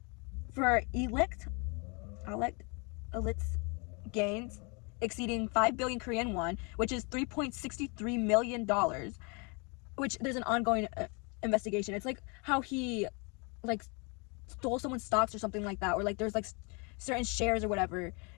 for illicit gains exceeding 5 billion Korean won, which is $3.63 million, which there's an ongoing investigation. It's like how he like stole someone's stocks or something like that, or like there's like certain shares or whatever,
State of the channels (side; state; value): right; quieter; 32.3 dB